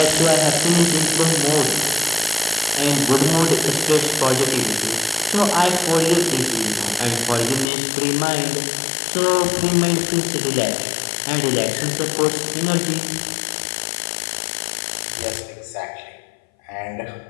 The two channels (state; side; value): drops out; right; at 7.7 s